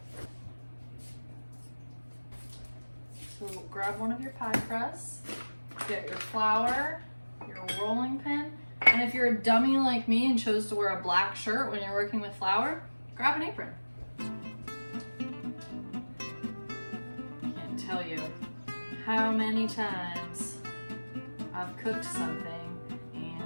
So grab one of your pie crusts, get your flour, your rolling pin, and if you're a dummy like me and chose to wear a black shirt when you're working with flour, grab an apron. Can't tell you how many times I've cooked something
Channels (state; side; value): inverted; both; correlation -1.00